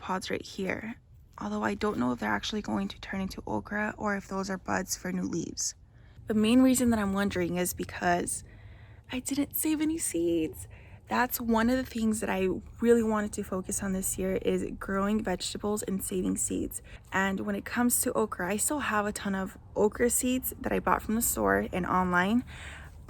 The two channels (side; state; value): both; identical; correlation 1.00